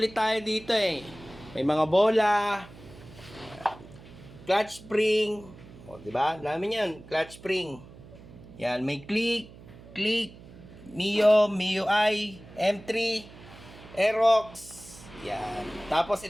tayo dito eh. May mga bola, clutch spring. O, diba? Dami yan, clutch spring. Yan, may click, Mio, MIUI, M3, Aerox. Yan. Tapos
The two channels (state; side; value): noise; right; hum, 19 dB below the sound